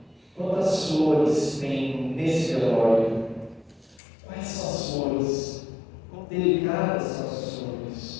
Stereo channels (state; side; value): drops out; right; at 4.0 s